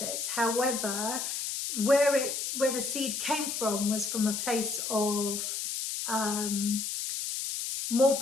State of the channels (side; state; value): left; noise; hiss, 3 dB below the sound